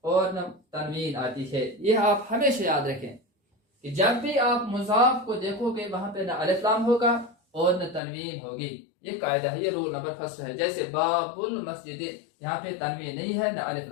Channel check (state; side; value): drops out; right; at 8.0 s